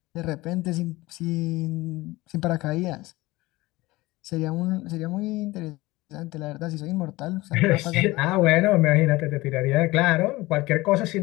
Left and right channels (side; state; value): right; quieter; 20.0 dB